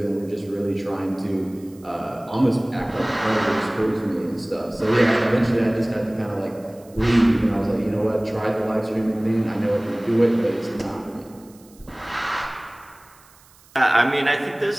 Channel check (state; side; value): noise; right; hiss, 27 dB below the sound